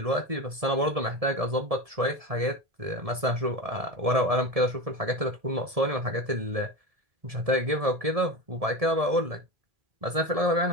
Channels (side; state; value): left; late; 1.7 ms